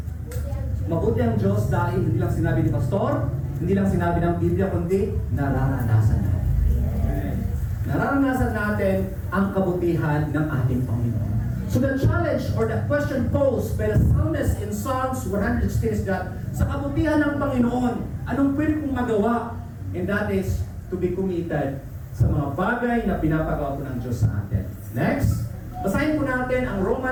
Mabuti ang Diyos dahil hindi lang sinabi ni Pastor, hindi lang sinabi ng Biblia, kundi nararanasan natin. Nararanasan natin ang kabutihan ng ating Panginoon. So the challenge or the question posed by the psalmist in Psalms 116 is that sa kabutihan ng Panginoon, anong pwede kong magawa? And that is to be committed sa mga bagay na pinapagawa po ng Diyos sa atin. Next, basahin po natin ang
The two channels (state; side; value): identical; both; correlation 1.00